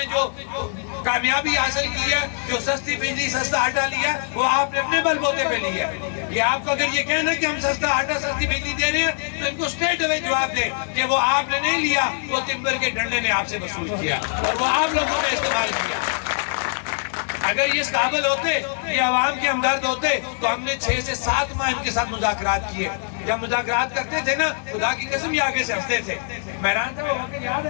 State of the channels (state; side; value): silent; right; digital silence